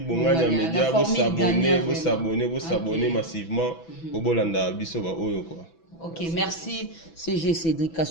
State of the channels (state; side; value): late; right; 6.1 ms